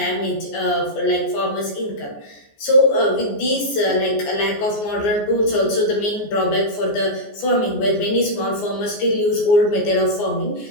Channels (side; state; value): right; late; 14 ms